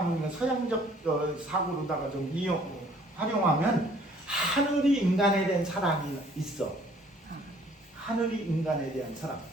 서양적 사고로다가 좀 활용하면 하늘이 인간에 대한 사랑이 있어. 하늘이 인간에 대한 사랑.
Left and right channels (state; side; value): normal; both; correlation 0.58